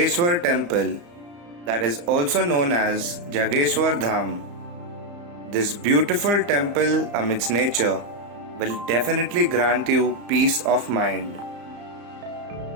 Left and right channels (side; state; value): left; late; 34 ms